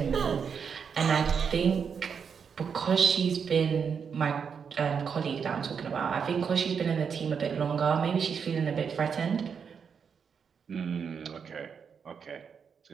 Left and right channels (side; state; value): left; quieter; 6.6 dB